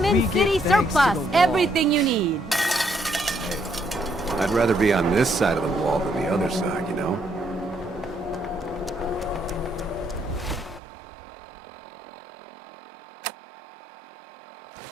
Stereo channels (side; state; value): left; drops out; at 10.8 s